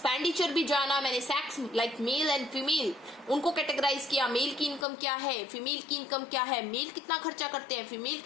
भी जाना, मैंने sex like male and female उनको कैटेगराइज किया, मेल की इनकम क्या है, फीमेल की इनकम क्या है, मेल कितना खर्चा करते हैं, फीमेल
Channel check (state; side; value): drops out; right; at 4.9 s